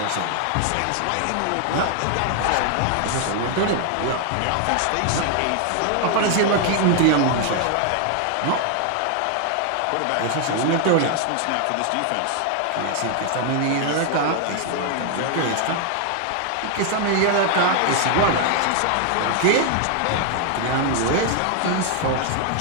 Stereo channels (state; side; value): different; both; correlation 0.00